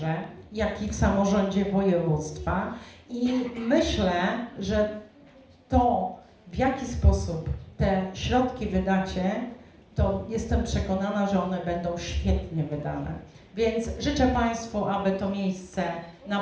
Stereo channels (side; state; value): both; identical; correlation 1.00